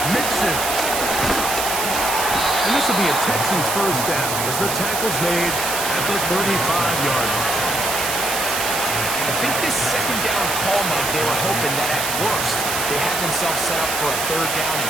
Mixon. And this will be a Texans 1st down as the tackle's made at the 35-yard line. I think this 2nd down call, Mike, they were hoping that at worst they had themselves set up for a 3rd down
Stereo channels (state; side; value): noise; right; hiss, 2 dB below the sound